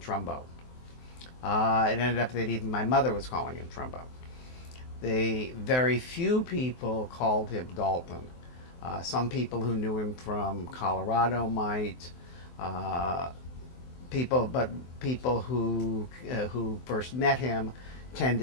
It ended up that even my mother was calling him Trumbo. The very few people called him Dalton. Some people who knew him from Colorado might. Uh, but people who first met him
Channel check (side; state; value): right; late; 23 ms